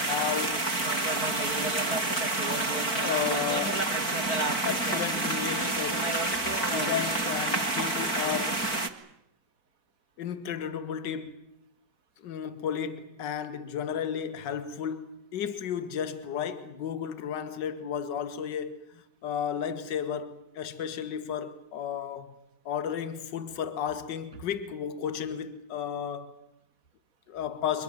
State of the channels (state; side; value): late; right; 4.5 ms